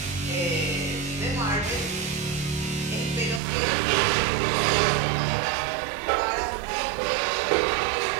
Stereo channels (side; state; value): left; drops out; at 3.4 s